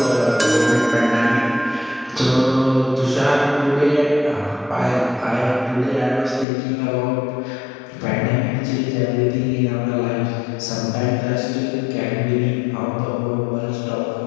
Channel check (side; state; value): right; drops out; at 6.5 s